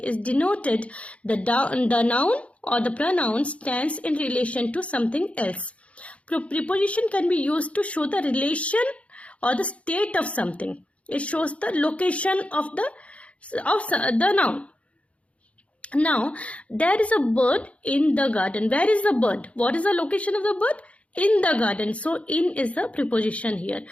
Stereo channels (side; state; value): right; late; 0.063 ms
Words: denoted. The noun or the pronoun stands in relation to something else. Preposition can be used to show the relation or the state of something. It shows the location of the noun. Now, there is a bird in the garden. Where is the bird? What is the location of the bird? In the garden. So, in is the preposition here.